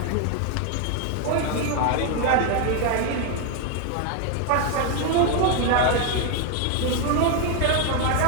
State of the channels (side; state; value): both; different; correlation 0.01